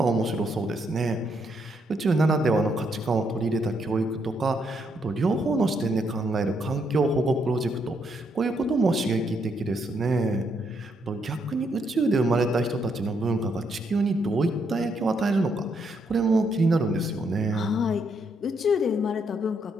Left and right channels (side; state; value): both; normal; correlation 0.76